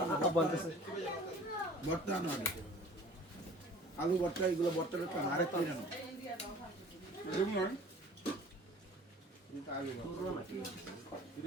আলু ভর্তা এগুলো ভর্তা আরেক করে জানো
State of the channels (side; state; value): both; normal; correlation 0.47